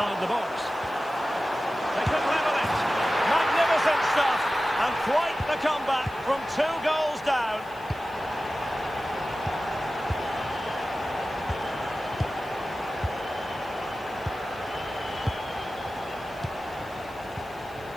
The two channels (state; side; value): noise; left; hiss, 25 dB below the sound